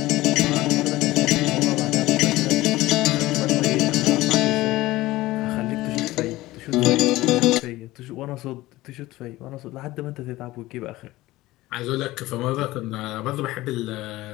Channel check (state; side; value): quieter; right; 18.0 dB